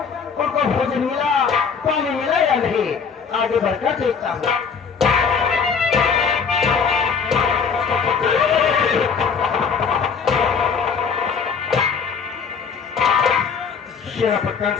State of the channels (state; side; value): quieter; right; 6.0 dB